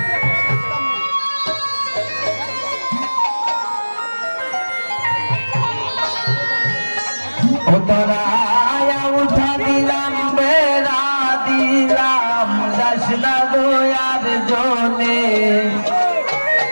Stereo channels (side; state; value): both; inverted; correlation -1.00